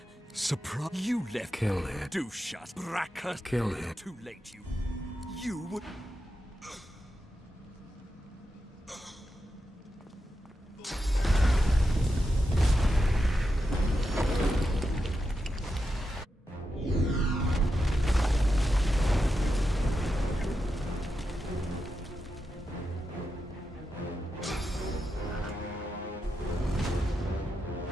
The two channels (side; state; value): both; normal; correlation 0.88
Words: Surprise! You left... Kill him. Do shut. Bracker. Kill him. Too late, you... You would...